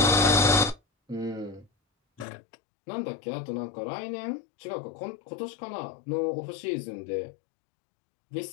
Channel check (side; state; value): right; drops out; at 2.2 s